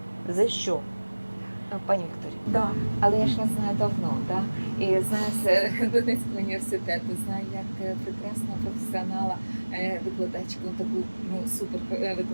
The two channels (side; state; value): both; inverted; correlation -1.00